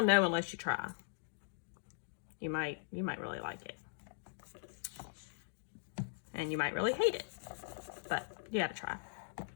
know unless you try. You might really like it. And you might really hate it, but you gotta try.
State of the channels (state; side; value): silent; right; digital silence